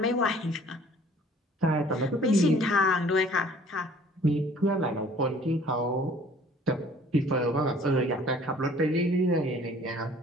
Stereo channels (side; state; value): both; normal; correlation 0.53